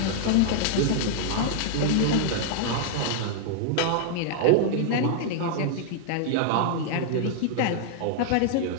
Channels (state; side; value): different; both; correlation -0.01